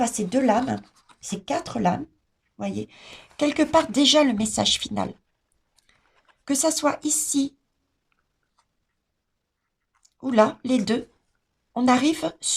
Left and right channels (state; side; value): identical; both; correlation 1.00